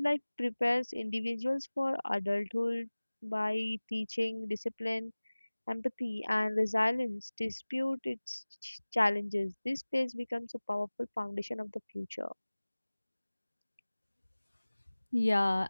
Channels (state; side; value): inverted; both; correlation -1.00